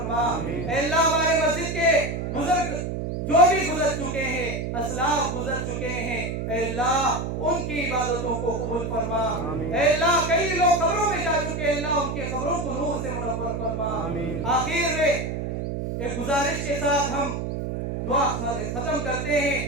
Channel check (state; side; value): noise; right; hum, 3 dB below the sound